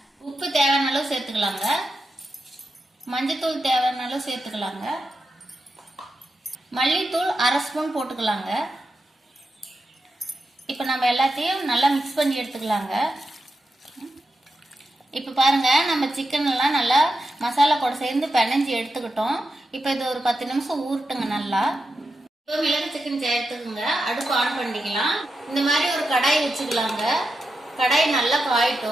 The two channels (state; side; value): normal; both; correlation 0.88